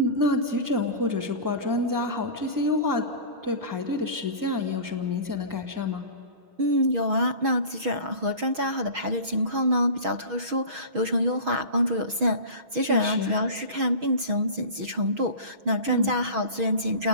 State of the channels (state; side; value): late; left; 6.3 ms